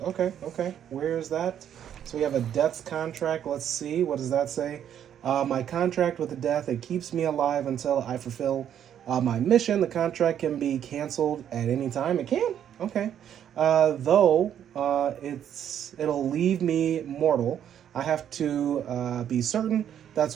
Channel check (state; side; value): quieter; left; 9.7 dB